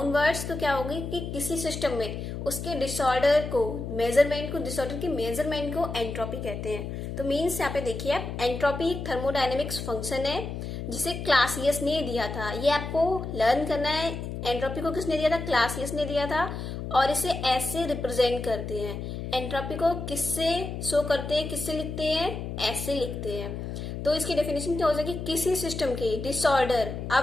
वर्ड्स तो क्या होगी कि किसी सिस्टम में उसके डिसऑर्डर को मेजरमेंट को डिसऑर्डर की मेजरमेंट को एंट्रोपी कहते हैं। तो मीन्स यहाँ पे देखिए आप, एंट्रोपी एक थर्मोडायनेमिक्स फंक्शन है जिसे क्लासियस ने दिया था। ये आपको लर्न करना है। एंट्रोपी को किसने दिया था? क्लासियस ने दिया था, और इसे एस से रिप्रेजेंट करते हैं। एंट्रोपी को किससे शो करते हैं, किससे लिखते हैं? एस से लिखते हैं। तो इसकी डेफिनेशन क्या हो जाएगी? किसी सिस्टम के डिसऑर्डर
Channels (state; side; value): noise; left; hum, 6 dB below the sound